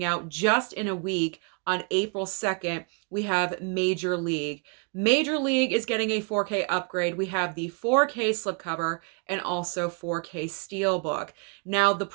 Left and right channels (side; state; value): left; quieter; 37.2 dB